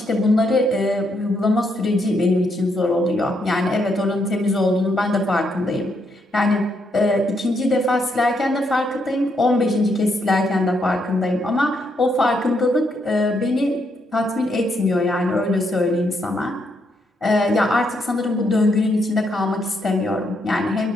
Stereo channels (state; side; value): normal; both; correlation 0.77